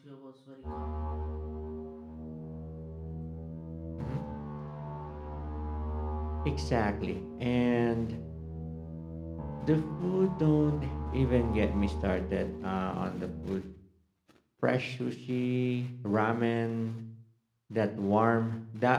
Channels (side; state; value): both; identical; correlation 1.00